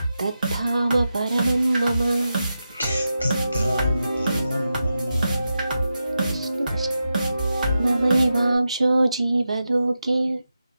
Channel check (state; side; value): inverted; both; correlation -0.90